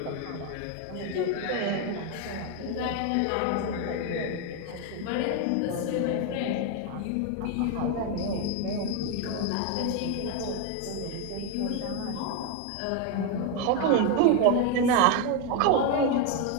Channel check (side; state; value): both; different; correlation 0.02